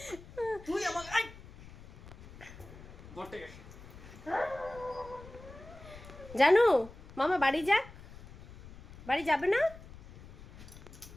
তুই আমাকে জানু মামা বাড়ি যাক। বাড়ি যাবে না?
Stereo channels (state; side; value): noise; left; rumble, 17 dB below the sound